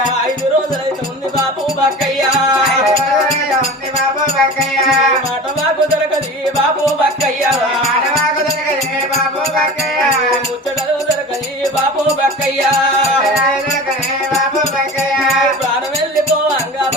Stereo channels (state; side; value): normal; both; correlation 0.35